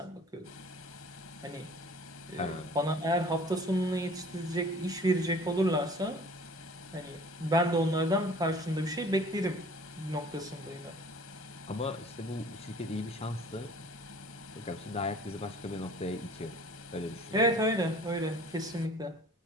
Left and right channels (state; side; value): normal; both; correlation 0.49